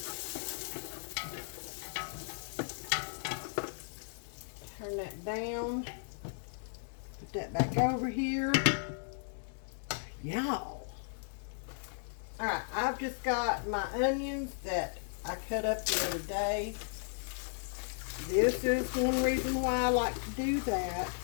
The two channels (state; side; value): silent; right; digital silence